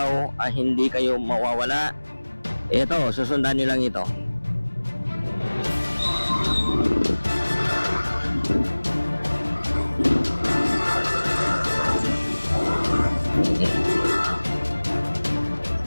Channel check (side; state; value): both; inverted; correlation -1.00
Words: hindi kayo mawawala, ito, susundan nyo lang ito.